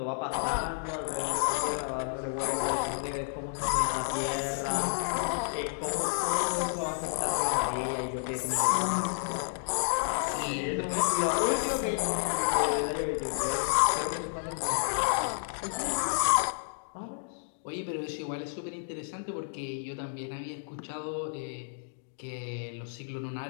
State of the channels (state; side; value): silent; right; digital silence